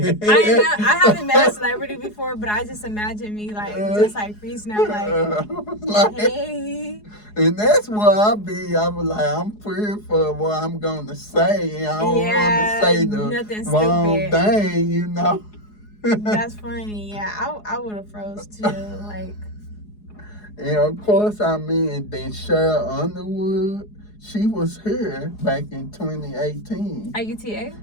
I haven't met a celebrity before, but I just imagine me just freezing out like, hey. And that's what I be. I was like, I'm pretty for what I'm gonna say. I don't want to say the wrong thing, That's funny. Yeah, I would have froze too. And of course, and then Cheryl Underwood. She was here back in 2018. At UTA?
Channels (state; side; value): late; right; 4.8 ms